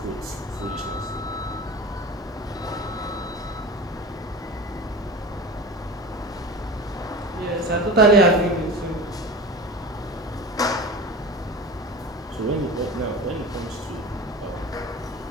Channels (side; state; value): both; normal; correlation 0.33